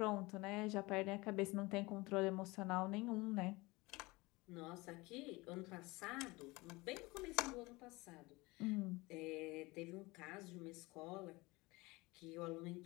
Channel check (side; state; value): right; quieter; 22.9 dB